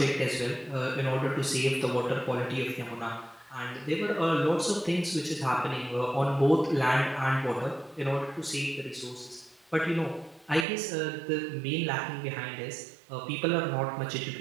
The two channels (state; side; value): drops out; left; at 10.7 s